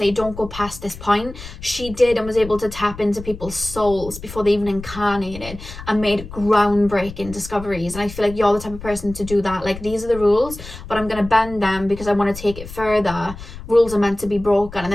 don't go past this point. She did, and was able to tap into people's souls before they even incarnated, and made groundbreaking discoveries. And I feel like you're the type of person to do that. Like, these are the rules, but I'm going to bend them because I want to take it further. Rules are meant to be broken. And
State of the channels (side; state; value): left; noise; rumble, 13 dB below the sound